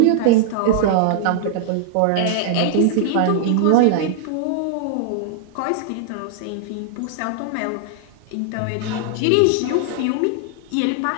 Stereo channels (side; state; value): both; different; correlation -0.01